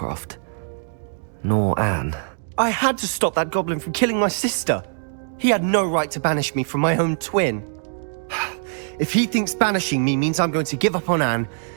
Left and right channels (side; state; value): left; silent; digital silence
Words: Nor Anne. I had to stop that goblin from killing my sister. He had no right to banish me from my own twin. If he thinks banishing me means I'm going to give up on Anne,